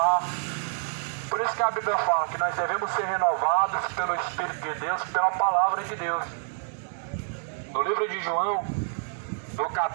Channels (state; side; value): silent; left; 60 dB below the other